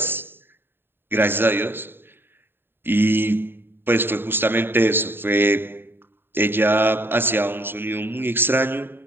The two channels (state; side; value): late; left; 0.10 ms